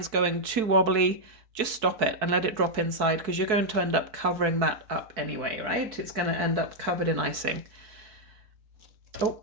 going too wobbly, just stop it and let it drop inside, because you're going to end up covering that up anyway, right? It's going to end up covered in icing. Oh,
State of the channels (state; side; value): late; left; 4.6 ms